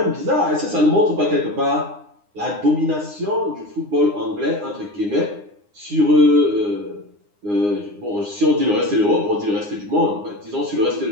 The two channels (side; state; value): left; late; 9.7 ms